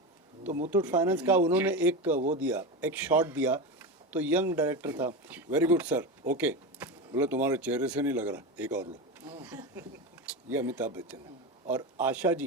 तो मुथूट फाइनेंस का उन्होंने एक वो दिया, एक शॉट दिया, तो यंग डायरेक्टर था, वेरी गुड सर, ओके, बोला तुम्हारे चेहरे से नहीं लग रहा, एक और लो। ये अमिताभ बच्चन है। और आशा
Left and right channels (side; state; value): both; normal; correlation 0.20